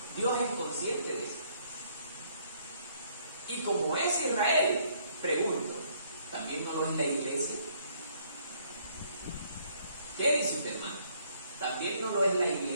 Dios es consciente de eso. Y como es Israel, pregunto, ¿también no lo es la iglesia? ¿Qué dice usted, hermano? ¿También no lo es la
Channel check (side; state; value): both; inverted; correlation -0.65